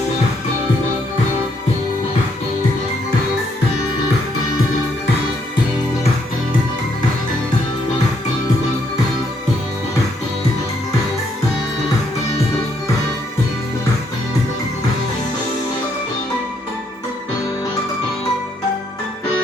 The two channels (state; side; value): normal; both; correlation 0.73